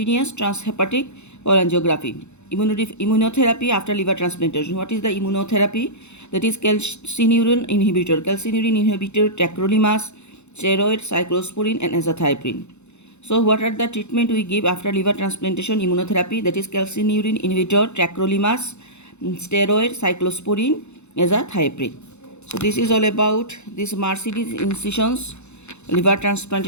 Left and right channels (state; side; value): late; right; 0.82 ms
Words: transhepatic cholangiography. Immunotherapy after liver transplantation. What is the immunotherapy? That is calcineurin inhibitor, tacrolimus, steroid, cyclosporin, and azathioprine. So what are the treatment we give after liver transplantation immunotherapy? That is calcineurin inhibitor, tacrolimus, steroid, cyclosporin, azathioprine. So this is all about this Mercedes incisions liver